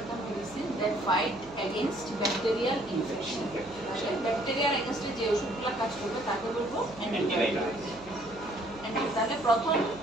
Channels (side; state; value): right; noise; hum, 21 dB below the sound